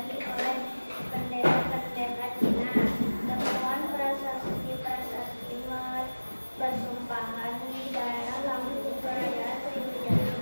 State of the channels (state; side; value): inverted; both; correlation -1.00